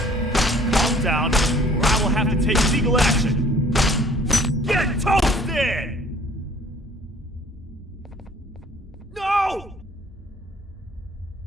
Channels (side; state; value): both; normal; correlation 0.55